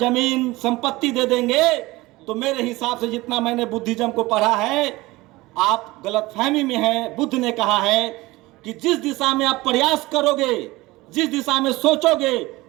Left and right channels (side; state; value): left; quieter; 20.2 dB